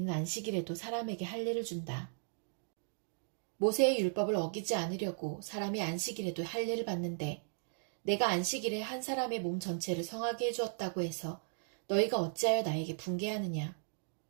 안식일에도 사람에게 할례를 준다. 모세의 율법을 어기지 않으려고 사람이 안식일에도 할례를 받는데 내가 안식일에 한 사람의 몸 전체를 성하게 해주었다고 해서 너희가 어찌하여 나에게 분개하느냐?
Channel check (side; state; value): left; silent; digital silence